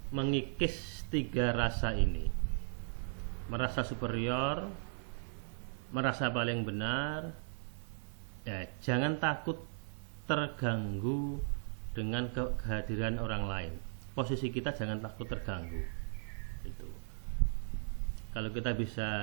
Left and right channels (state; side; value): silent; left; 53 dB below the other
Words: mengikis 3 rasa ini: merasa superior, merasa paling benar. Ya, jangan takut terganggu dengan kehadiran orang lain. Posisi kita jangan takut terganggu. Itu. Kalau kita